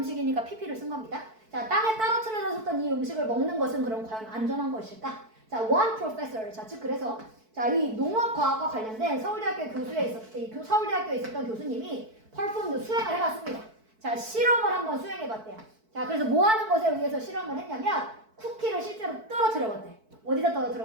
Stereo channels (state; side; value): late; left; 4.6 ms